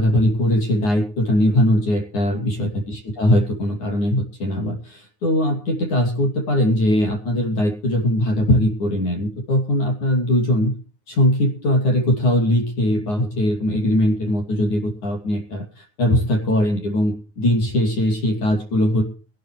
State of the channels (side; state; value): right; late; 9.6 ms